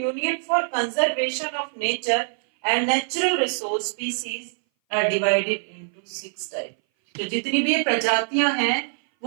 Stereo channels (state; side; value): silent; left; 59 dB below the other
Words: for Conservation of Nature and Natural Resource, species are divided into 6 type. तो जितनी भी ये प्रजातियां हैं